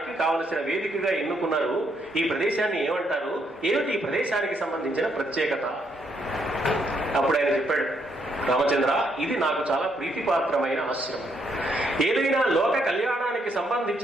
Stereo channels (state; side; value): normal; both; correlation 0.74